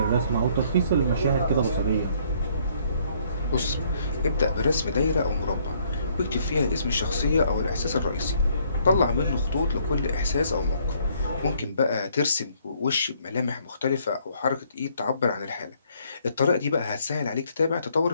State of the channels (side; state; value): both; inverted; correlation -0.66